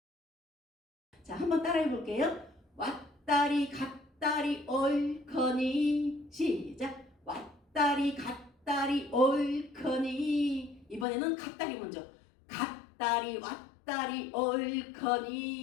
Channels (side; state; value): right; drops out; at 11.1 s